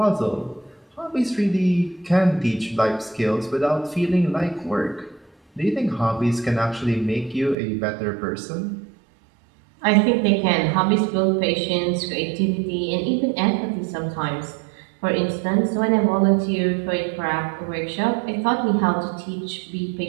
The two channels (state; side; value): drops out; left; at 7.6 s